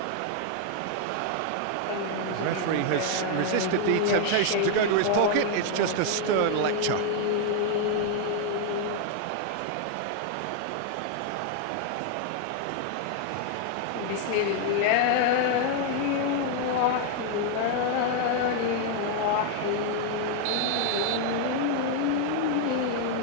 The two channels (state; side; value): different; both; correlation 0.00